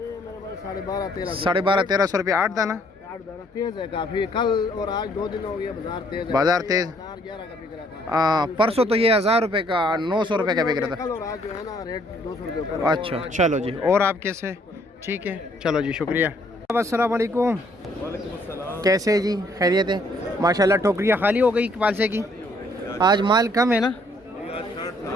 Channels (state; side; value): normal; both; correlation 0.65